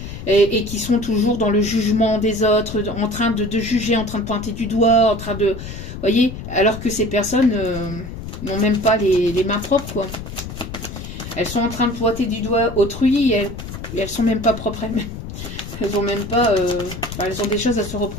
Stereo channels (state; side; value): noise; left; rumble, 10 dB below the sound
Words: Et qui sont toujours dans le jugement des autres, en train de juger, en train de pointer du doigt, en train de... voyez, alors que ces personnes... n'ont même pas les mains propres, quoi. Elles sont en train de pointer du doigt autrui et elles sont même pas propres elles-mêmes. Elles ont même pas... elles ont des choses à se